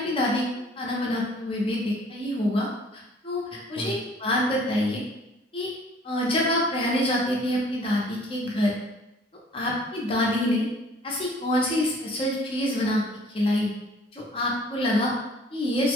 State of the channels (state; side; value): normal; both; correlation 0.54